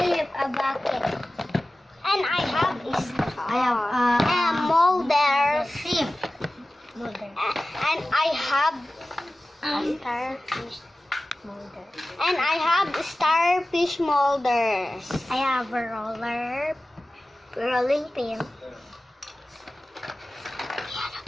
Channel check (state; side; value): normal; both; correlation 0.96